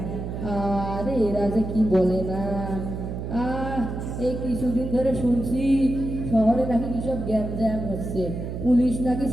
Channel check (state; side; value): noise; right; hum, 6 dB below the sound